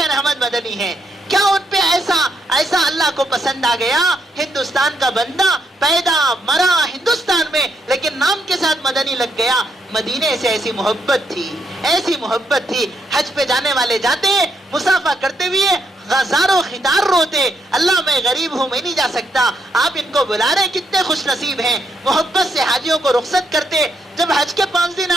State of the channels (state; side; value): normal; both; correlation 0.77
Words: احمد مدنی ہے. کیا ان پہ ایسا اللہ کو پسند آ گیا؟ ہندوستان کا بندہ پیدا مرا ہندوستان میں، لیکن نام کے ساتھ مدنی لگ گیا. مدینے سے ایسی محبت تھی. حج پہ جانے والے جاتے، مسافہ کرتے ہوئے غزاروں خطار روتے، اللہ میں غریب ہوں، میں نہیں جا سکتا. آپ ان کو بلا رہے، کتنے خوش نصیب ہیں. محبت سے حاجیوں کو رخصت کرتے. جب حج کے 5 دن